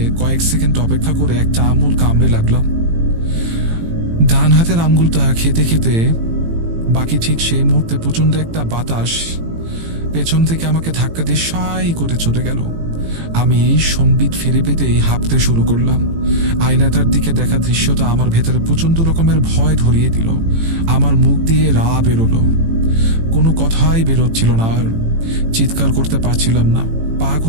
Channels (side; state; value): left; late; 18 ms